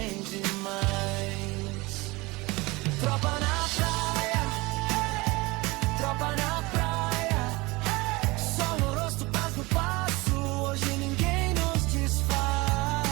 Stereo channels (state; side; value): quieter; left; 23.1 dB